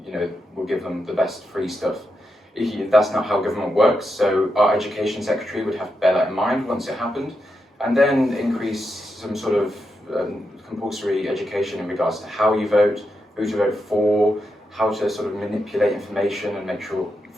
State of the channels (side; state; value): both; normal; correlation 0.85